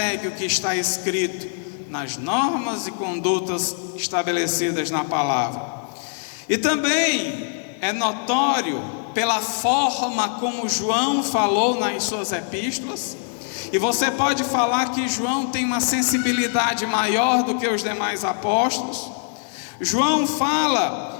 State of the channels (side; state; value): right; silent; 59 dB below the other